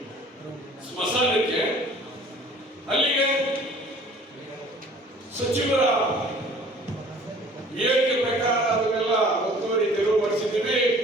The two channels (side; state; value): both; normal; correlation 0.50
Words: ಸ್ಮಶಾನಕ್ಕೆ. ಅಲ್ಲಿಗೆ ಸಚಿವರ ಹೇಳಿಕೆ ಪ್ರಕಾರ ಅದನ್ನೆಲ್ಲ ಒತ್ತುವರಿ ತೆರವು ಮಾಡಿಸಿದ್ದೀವಿ.